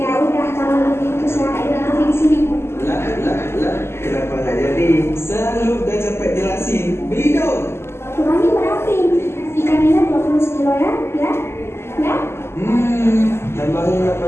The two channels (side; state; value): right; late; 0.12 ms